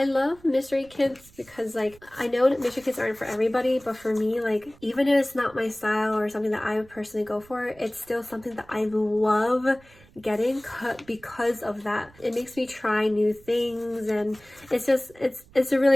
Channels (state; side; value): noise; right; rumble, 26 dB below the sound